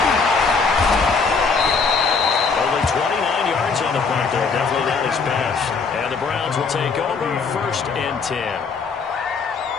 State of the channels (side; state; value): right; quieter; 4.9 dB